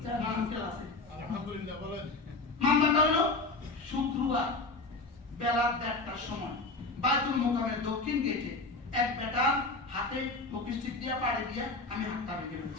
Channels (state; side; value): quieter; right; 3.4 dB